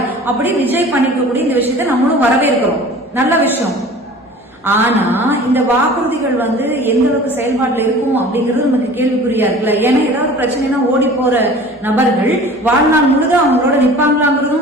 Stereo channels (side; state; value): both; normal; correlation 0.43